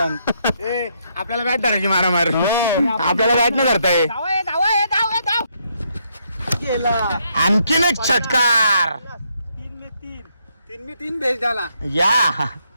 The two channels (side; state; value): both; inverted; correlation -0.75